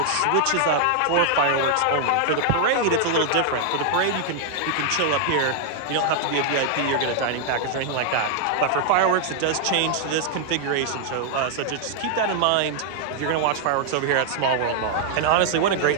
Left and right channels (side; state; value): both; different; correlation 0.00